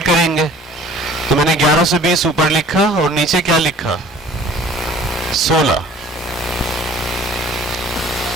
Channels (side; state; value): both; normal; correlation 0.50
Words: करेंगे। तो मैंने 1120 ऊपर लिखा और नीचे क्या लिखा? 16।